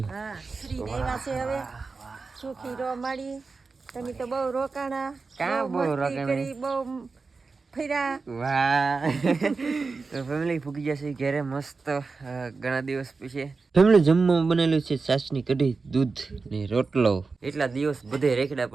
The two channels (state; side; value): quieter; left; 4.3 dB